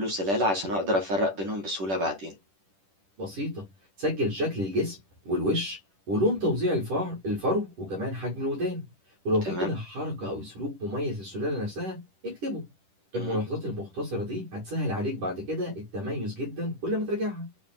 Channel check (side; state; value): left; late; 10 ms